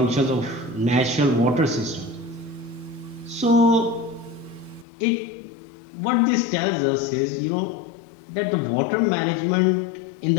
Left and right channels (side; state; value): right; drops out; at 4.9 s